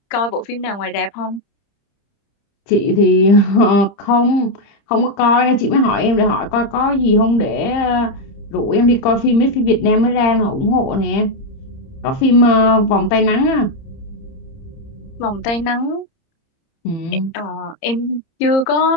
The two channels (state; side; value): late; right; 30 ms